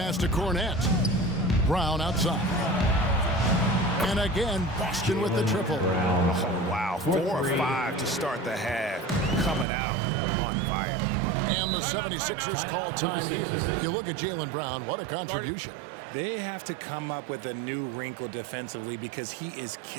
to Cornette. Brown outside. And again, Boston with the triple. Oh, wow. 4 of 5 to start the half. Coming out on fire. And the 76ers call time here. You look at Jaylen Brown, what a contribution. They have to come up with a new wrinkle defensively because he is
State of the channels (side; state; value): left; drops out; at 9.7 s